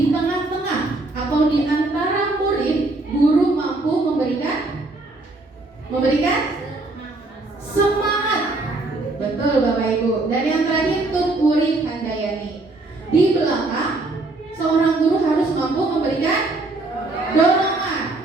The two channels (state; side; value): quieter; left; 3.0 dB